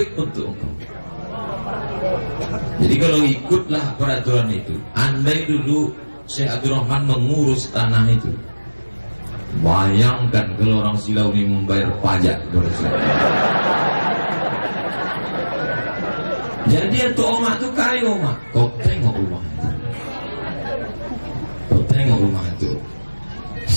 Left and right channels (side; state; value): both; inverted; correlation -1.00